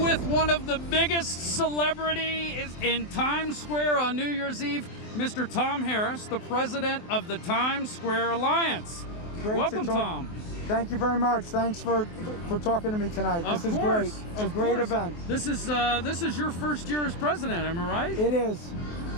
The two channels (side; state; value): right; late; 24 ms